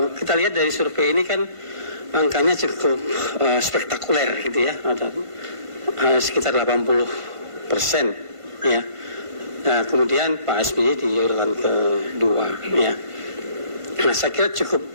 kita lihat dari survei ini kan angkanya cukup spektakuler gitu ya, ada sekitar 80% ya. Nah, kemudian Pak SBY di urutan kedua ya. Nah, saya kira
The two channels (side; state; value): left; late; 1.5 ms